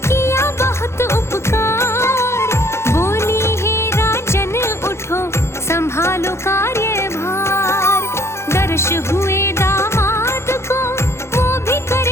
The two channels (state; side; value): late; right; 0.13 ms